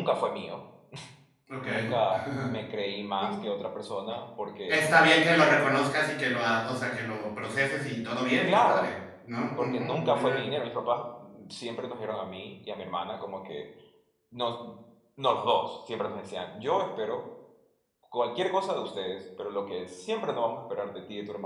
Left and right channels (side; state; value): both; identical; correlation 1.00